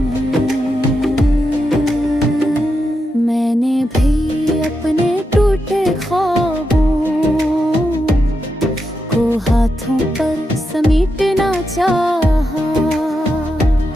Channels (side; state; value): both; normal; correlation 0.86